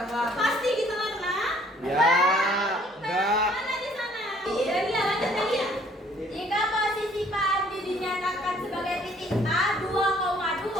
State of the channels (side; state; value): both; normal; correlation 0.60